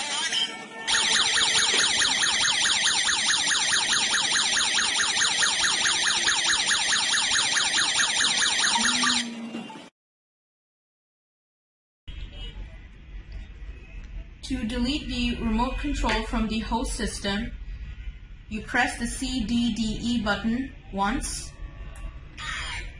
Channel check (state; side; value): identical; both; correlation 1.00